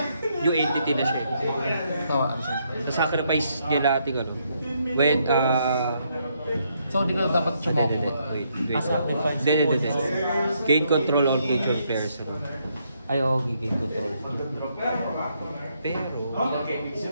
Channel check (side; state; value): both; inverted; correlation -0.74